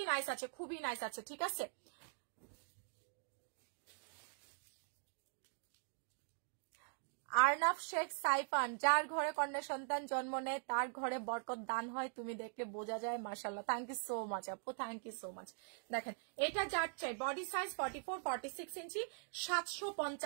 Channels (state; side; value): silent; left; digital silence